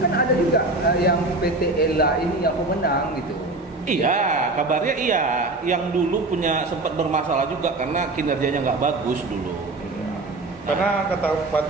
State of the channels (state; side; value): quieter; left; 3.0 dB